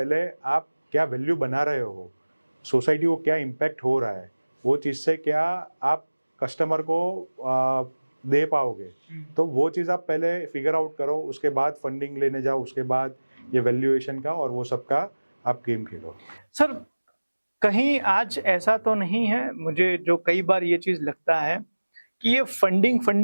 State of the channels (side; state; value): both; inverted; correlation -1.00